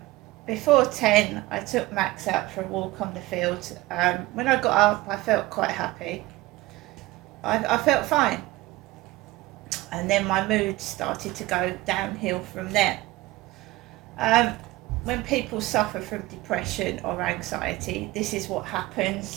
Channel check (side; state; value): left; quieter; 19.0 dB